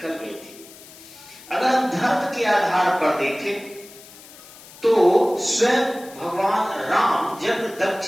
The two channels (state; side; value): noise; left; hiss, 20 dB below the sound